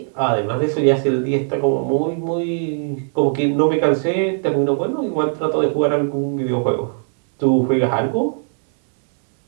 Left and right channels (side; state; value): left; silent; digital silence